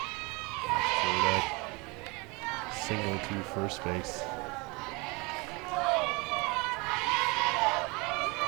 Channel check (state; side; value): quieter; left; 27.2 dB